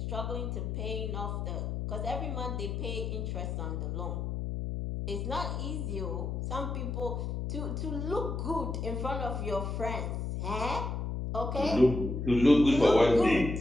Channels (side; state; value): left; noise; hum, 3 dB below the sound